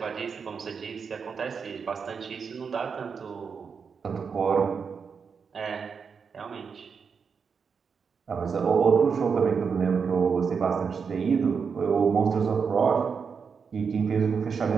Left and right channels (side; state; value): left; quieter; 5.9 dB